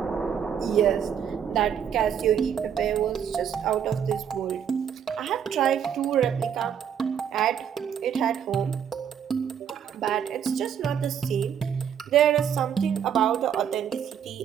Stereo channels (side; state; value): left; quieter; 8.3 dB